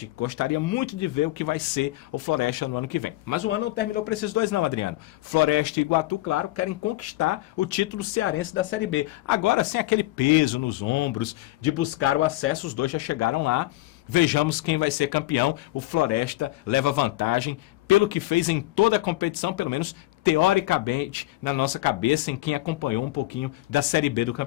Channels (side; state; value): right; quieter; 18.0 dB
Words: Gostaria muito de ver o que vai ser o Floresta no ano que vem. Mas o ano não terminou para esses dois não, Adriano. Floresta e Iguatu, claro, querem conquistar o título cearense da Série B. Agora, sem aquele peso nos ombros de buscar o acesso, os dois já chegaram lá. Vejamos quem vai ser campeão. O Floresta leva vantagem pelo que fez em toda a competição, pelo menos teoricamente, na nossa cabeça, em quem acompanhou um pouquinho da Série B do